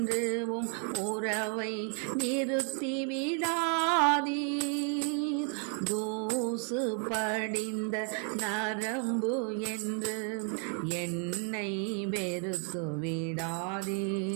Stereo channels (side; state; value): left; quieter; 40.0 dB